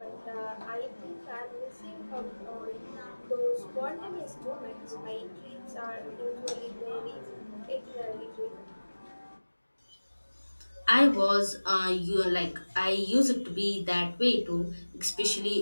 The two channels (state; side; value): inverted; both; correlation -1.00